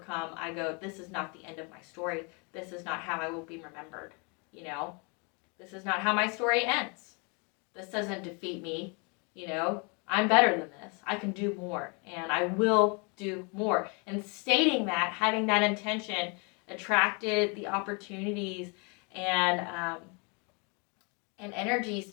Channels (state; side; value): quieter; right; 33.0 dB